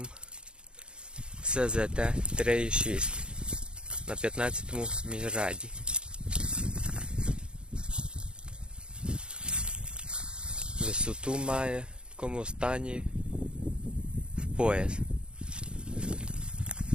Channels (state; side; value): late; left; 0.052 ms